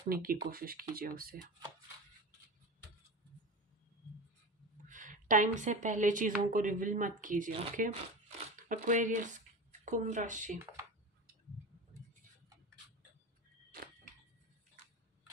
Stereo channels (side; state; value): both; normal; correlation 0.28